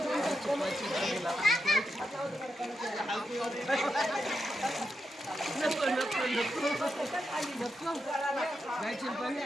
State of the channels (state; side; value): normal; both; correlation 0.86